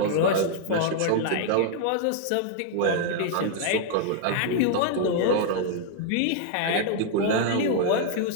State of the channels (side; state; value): both; different; correlation 0.00